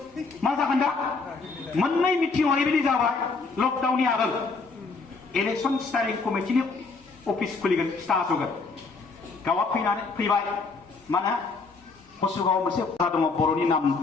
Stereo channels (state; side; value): quieter; right; 4.2 dB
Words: मा जागोन दा मोननै मिटिं ओरैबायदि जाबाय लकडाउननि आगोल इलेक्सन स्टारिं कमिटिनि अफिस खुलिगोन खिथा होगोन गावआ फैबाय माने कसुगावआव मोनसे बाजार दङ बर'नि नाम